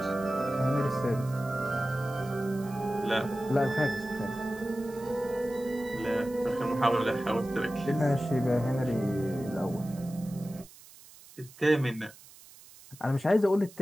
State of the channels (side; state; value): right; noise; hiss, 21 dB below the sound